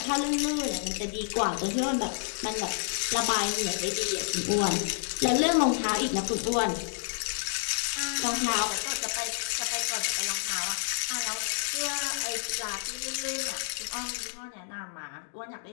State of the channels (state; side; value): silent; right; digital silence